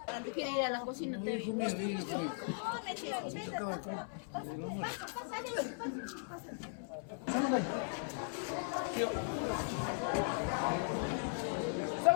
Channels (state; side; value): silent; right; 52 dB below the other